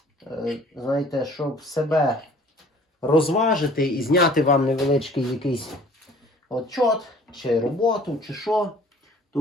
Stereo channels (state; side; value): normal; both; correlation 0.52